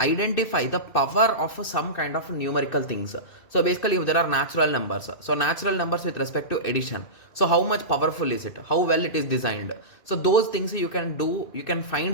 the power of some kind of numerical things. So basically, if there are natural numbers, so natural numbers with respect to addition, so how much powerful is it, how well it is designed, so those things you can do, you can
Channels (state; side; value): late; right; 2.6 ms